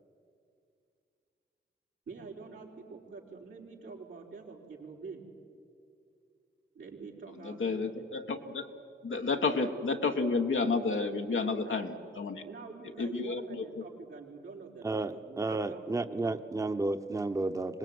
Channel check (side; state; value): both; normal; correlation 0.45